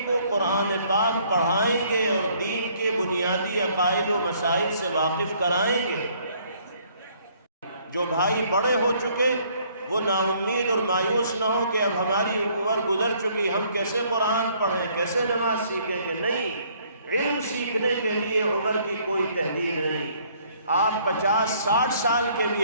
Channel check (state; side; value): inverted; both; correlation -0.63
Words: کو قرآن پاک پڑھائیں گے اور دین کے بنیادی عقائد و مسائل سے واقف کرائیں گے۔ جو بھائی بڑے ہو چکے وہ نا امید اور مایوس نہ ہو کہ اب ہماری عمر گزر چکی، ہم کیسے قرآن پڑھیں، کیسے نماز سیکھیں گے۔ نہیں، علم سیکھنے کے لیے عمر کی کوئی تحدید نہیں۔ آپ 50-60 سال کے